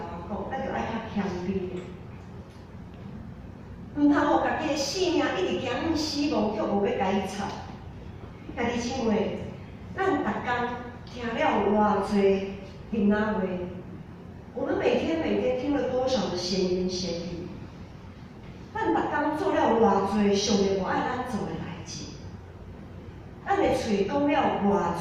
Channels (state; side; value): identical; both; correlation 1.00